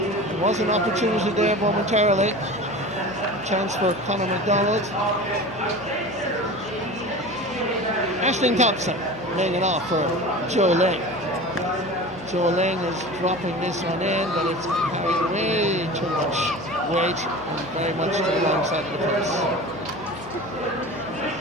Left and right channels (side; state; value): right; noise; hum, 21 dB below the sound